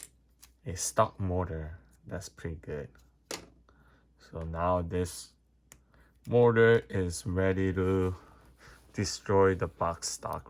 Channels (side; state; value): both; identical; correlation 1.00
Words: stock motor. That's pretty good. So now this motor is ready to destroy the box stock